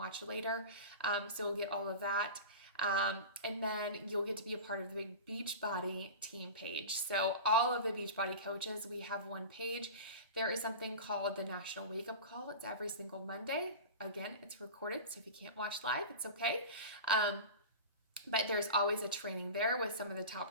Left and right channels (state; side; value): inverted; both; correlation -0.30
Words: later. So we'll get all of that. And then you'll get to be a part of the big Beachbody team page. So all of the Beachbody coaches, we have one page. There is something called the National Wake Up Call. It's every single Monday. Again, it's recorded, so if you can't watch live, it's okay. But there's always a training there with some of the